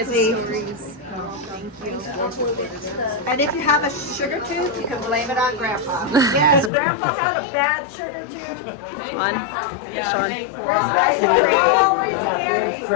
safely. stories. And if you have a sugar tooth, you can blame it on Grandpa. Yes, Grandpa had a bad sugar tooth. On. Sean. Right, always candy.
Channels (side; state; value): right; drops out; at 6.7 s